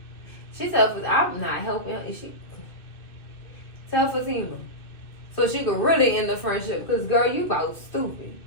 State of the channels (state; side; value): late; right; 2.6 ms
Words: She tell I'm not helping. She tell Fatima. So she could really end the friendship. Because, girl, you about stupid.